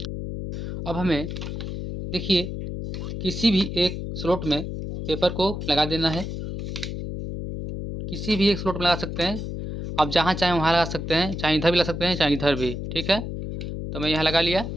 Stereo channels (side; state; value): left; noise; hum, 6 dB below the sound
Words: अब हमें देखिए किसी भी एक स्लॉट में पेपर को लगा देना है। किसी भी एक स्लॉट में लगा सकते हैं आप, जहाँ चाहें वहाँ लगा सकते हैं, चाहे इधर भी लगा सकते हैं चाहे इधर भी। ठीक है, तो मैं यहाँ लगा लिया।